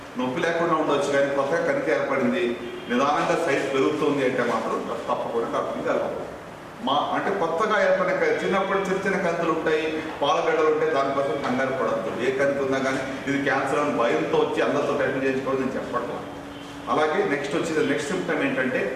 నొప్పి లేకుండా ఉండవచ్చు కానీ కొత్తగా కణితి ఏర్పడింది, నిదానంగా సైజ్ పెరుగుతుంది అంటే మాత్రం తప్పకుండా డాక్టర్ని కలవాలి. అంటే కొత్తగా ఏర్పడిన చిన్నప్పుడు చిన్న కంతులు ఉంటాయి, పాలగడ్డలు ఉంటాయి, దానికోసం కంగారు పడద్దు. ఏ కంతి ఉన్నా కానీ ఇది క్యాన్సర్ అని భయంతో వచ్చి అందరితో టెస్ట్ చేసుకోవడం నేను చెప్పట్లా. అలాగే నెక్స్ట్ సిమ్టమ్ ఏంటంటే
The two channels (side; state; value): both; identical; correlation 1.00